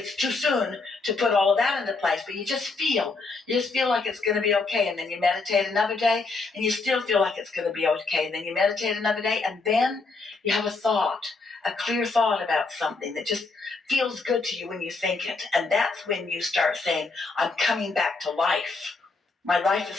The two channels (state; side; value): quieter; right; 3.9 dB